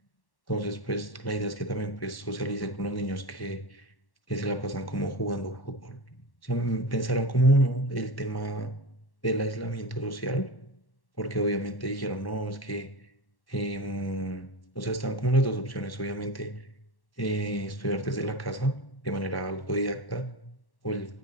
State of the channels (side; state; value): right; late; 1.1 ms